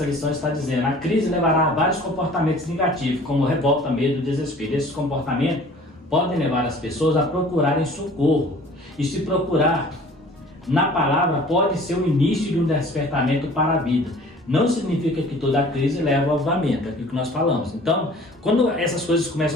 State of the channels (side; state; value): both; normal; correlation 0.48